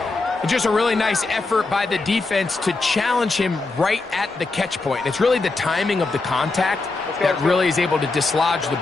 Just a really nice effort by the defense to challenge him right at the catch point. It's really the timing of the contact that really is able to dislodge the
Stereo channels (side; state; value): right; quieter; 3.5 dB